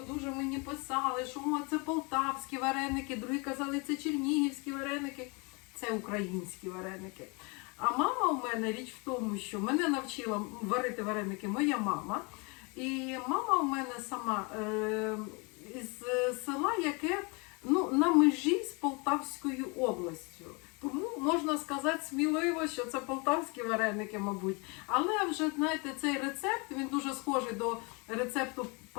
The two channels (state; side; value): quieter; right; 30.2 dB